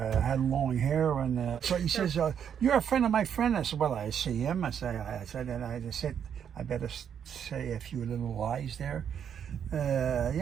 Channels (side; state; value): left; quieter; 8.3 dB